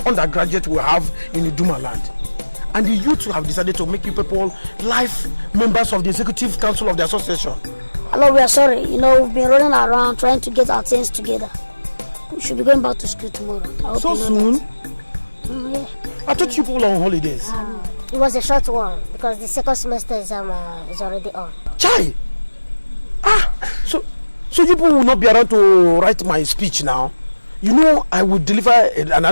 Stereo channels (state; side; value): inverted; both; correlation -1.00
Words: undergraduate we have in the Duma land. And the youth have decided to make you people life members of the executive council of the association. Hello, we are sorry. You know, we've been running around trying to get our things together. We should be going back to school tomorrow. I hope So you know soon? that. Yeah. I thought you people were on holidays. It was a short one because the second semester exam is already on. Chai! So you people will not be around to write my speech now. You know I will deliver an